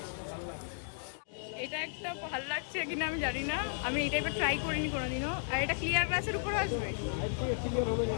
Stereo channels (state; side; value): silent; right; digital silence